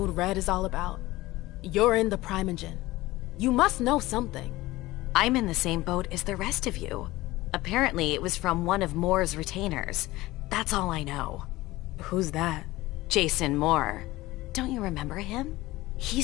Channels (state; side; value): quieter; right; 18.5 dB